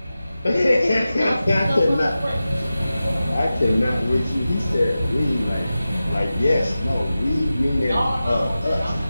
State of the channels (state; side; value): inverted; both; correlation -0.94